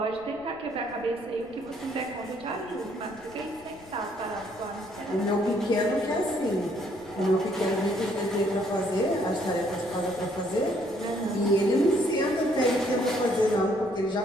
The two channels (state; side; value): noise; left; rumble, 25 dB below the sound